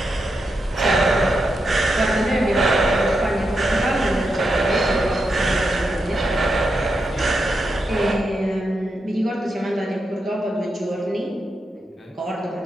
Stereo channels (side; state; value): both; normal; correlation 0.85